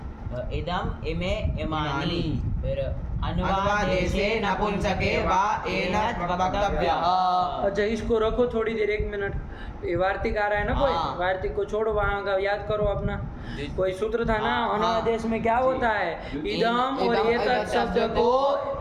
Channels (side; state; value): both; identical; correlation 1.00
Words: इदम इमे इमानी। फिर अनुवादेशे नपुंसके वा एनत् वक्तव्यः। अच्छा इसको रखो थोड़ी देर, 1 मिनट। ये वार्तिक आ रहा है ना कोई? हाँ। वार्तिक को छोड़ो, वहाँ का याद करो अपना। जी। कोई सूत्र था ना हाँ। अनुवादेश में, क्या होता है? इदम और इदम एतत् शब्द को